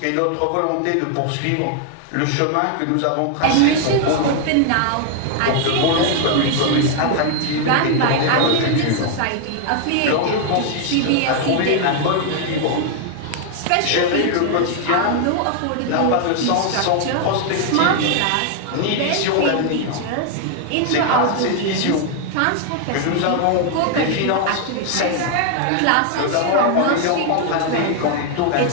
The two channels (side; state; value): both; different; correlation 0.00